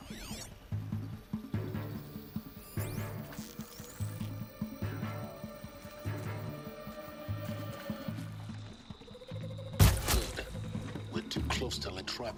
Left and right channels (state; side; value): identical; both; correlation 1.00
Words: Good. We're too close to let